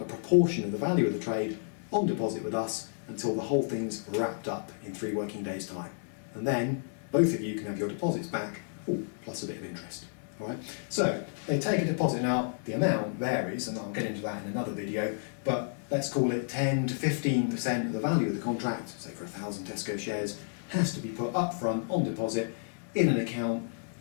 a proportion of the value of the trade on deposit with us until the whole thing's wrapped up in 3 working days' time. And then both of you can have your deposits back, plus a bit of interest. All right? So they take a deposit. Now the amount varies, and I'll get into that in another video, but let's call it 10 to 15% of the value of the contract, say for 1,000 Tesco shares, has to be put up front on deposit in an account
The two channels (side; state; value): right; silent; digital silence